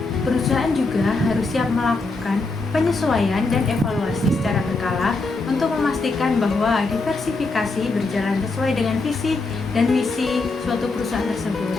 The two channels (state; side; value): quieter; right; 3.5 dB